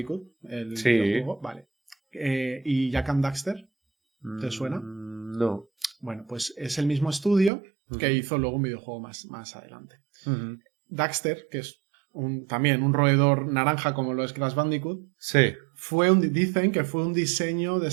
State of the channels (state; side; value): drops out; left; at 7.5 s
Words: el videojuego. Vale. ¿Y Jak and Daxter? ¿Te suena? No. Bueno, pues es el mismo estudio que hizo luego un videojuego más adelante. Daxter, que es también un roedor naranja como lo es Crash Bandicoot, dicen que fue un diseño